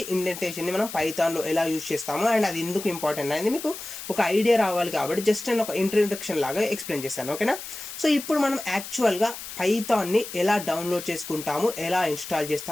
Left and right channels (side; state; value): left; noise; hiss, 10 dB below the sound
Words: ఇండెంటేషన్ని మనం పైథాన్లో ఎలా యూజ్ చేస్తాము అండ్ అది ఎందుకు ఇంపార్టెంట్ అనేది మీకు ఒక ఐడియా రావాలి. కాబట్టి జస్ట్ నేను ఒక ఇంట్రడక్షన్ లాగా ఎక్స్ప్లెయిన్ చేస్తాను. ఓకేనా? సో ఇప్పుడు మనం యాక్చువల్గా పైథాన్ని ఎలా డౌన్లోడ్ చేసుకుంటాము, ఎలా ఇన్స్టాల్